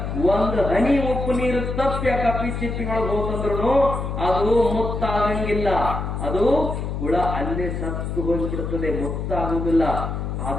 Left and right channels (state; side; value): noise; left; hum, 4 dB below the sound